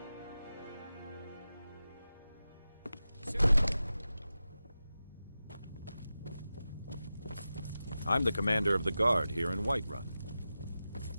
I'm the commander of the guard here in Whiterun.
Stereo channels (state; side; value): inverted; both; correlation -0.93